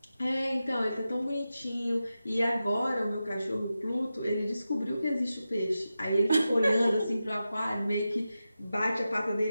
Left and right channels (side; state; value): both; inverted; correlation -0.92